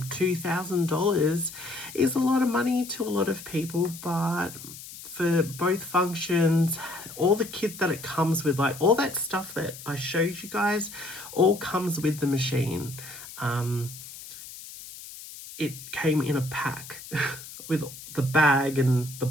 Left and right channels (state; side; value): noise; left; hiss, 14 dB below the sound